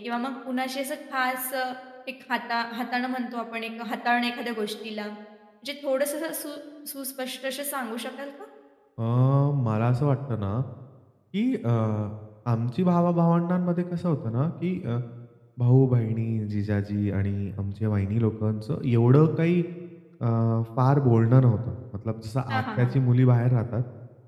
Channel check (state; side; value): identical; both; correlation 1.00